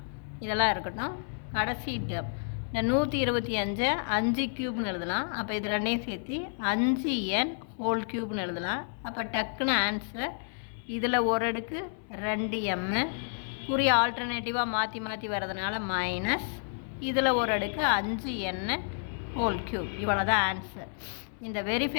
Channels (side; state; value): right; silent; 58 dB below the other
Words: இதெல்லாம் இருக்கட்டும். கடைசி டேர்ம் இந்த 125 5³ எழுதலாம். அப்போ இது ரெண்டையும் சேர்த்து 5n³ எழுதலாம். அப்போ டக்குன்னு ஆன்சர் இதில் ஒரு அடுக்கு 2m குறி ஆல்டர்னேட்டிவாக மாற்றி மாற்றி வர்றதுனால மைனஸ் இதில் ஒரு அடுக்கு 5n³. இவ்வளோ தான் ஆன்சர். இந்த